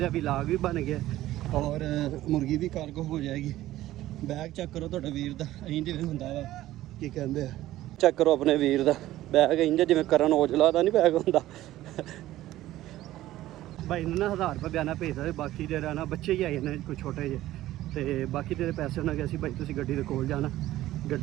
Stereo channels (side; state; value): left; quieter; 15.0 dB